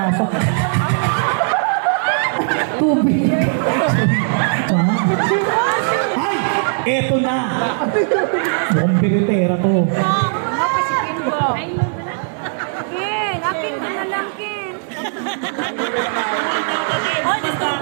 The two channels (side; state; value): left; silent; 67 dB below the other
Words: aso. Tubig. Ay! Eto na! Mukhang biritera to. Ken, akin ka na lang, Ken.